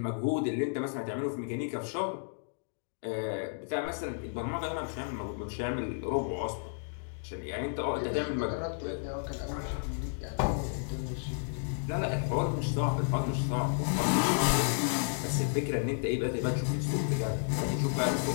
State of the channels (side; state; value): right; silent; digital silence